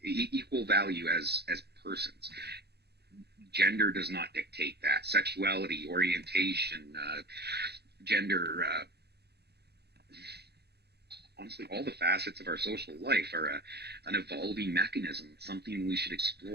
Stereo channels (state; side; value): late; left; 0.48 ms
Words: equal value as persons. Gender does not dictate that. Sexuality, orientation, gender, honestly, all the facets of our social life are an evolving mechanism, something we should